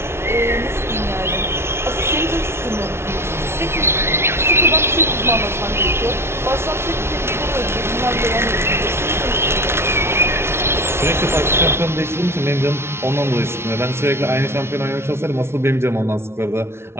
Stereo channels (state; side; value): late; left; 0.12 ms